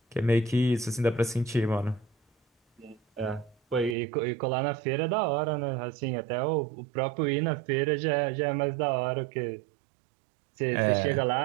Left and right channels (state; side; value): drops out; left; at 4.0 s